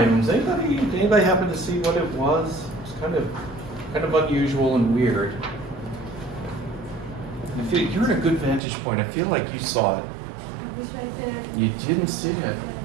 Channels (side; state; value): left; drops out; at 8.6 s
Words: Does anybody happen to see what it was? It's kind of unusual and weird. You're in a good vantage point. I feel like you saw it. I wish I did. You didn't see it.